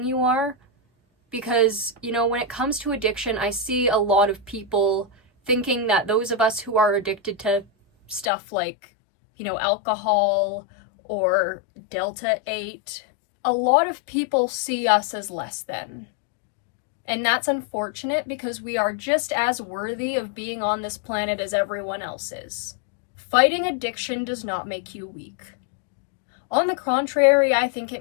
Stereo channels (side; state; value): right; drops out; at 8.3 s